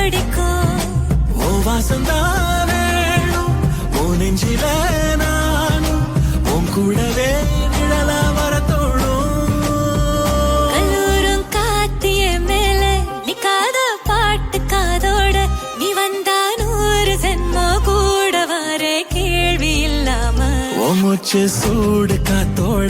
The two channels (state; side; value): identical; both; correlation 1.00